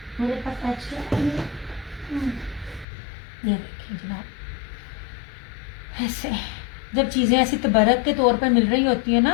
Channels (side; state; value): right; drops out; at 2.9 s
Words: मेरे पास एक्स्ट्रा है। ये देखिए जनाब, ऐसे जब चीज़ें ऐसी तबरक के तौर पर मिल रही होती है